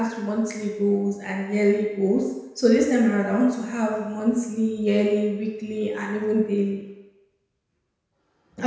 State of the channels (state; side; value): identical; both; correlation 1.00